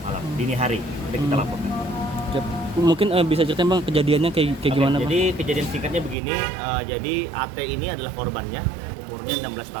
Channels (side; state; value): left; drops out; at 6.2 s